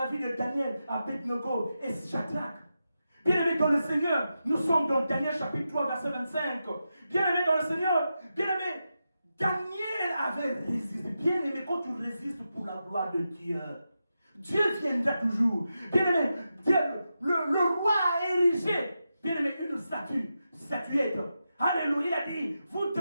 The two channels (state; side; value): inverted; both; correlation -0.89